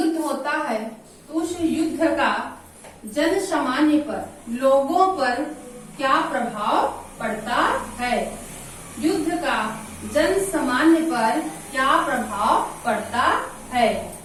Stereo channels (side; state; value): both; identical; correlation 1.00